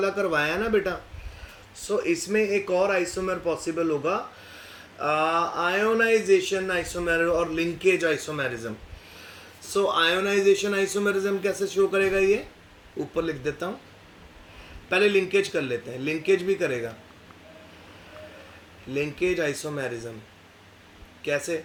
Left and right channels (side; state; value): both; identical; correlation 1.00